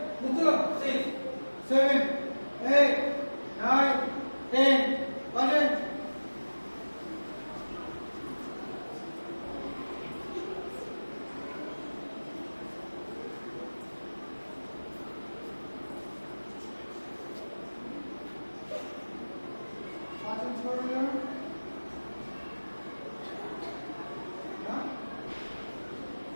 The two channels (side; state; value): both; inverted; correlation -1.00